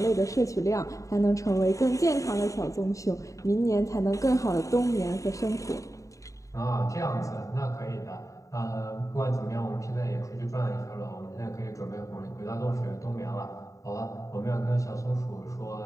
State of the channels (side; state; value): right; late; 0.16 ms